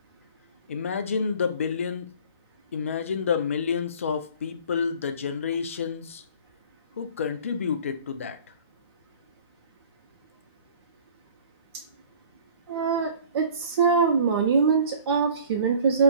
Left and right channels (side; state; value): both; inverted; correlation -0.48